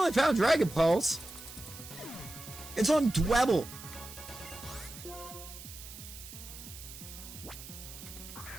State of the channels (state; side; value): noise; right; hiss, 14 dB below the sound